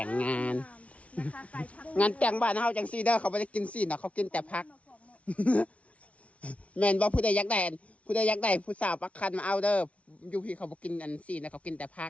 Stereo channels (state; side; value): late; right; 0.064 ms